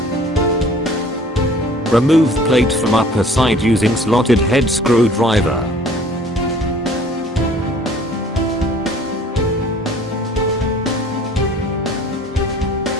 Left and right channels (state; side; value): normal; both; correlation 0.52